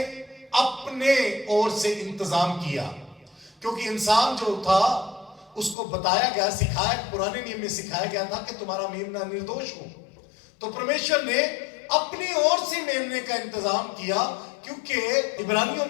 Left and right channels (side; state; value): right; drops out; at 5.8 s